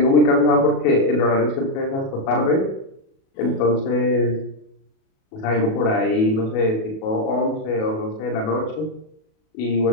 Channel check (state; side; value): late; right; 37 ms